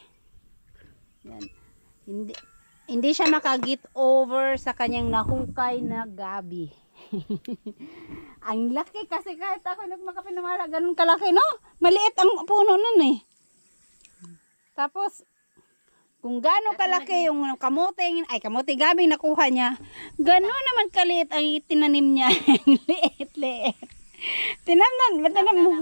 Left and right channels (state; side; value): inverted; both; correlation -1.00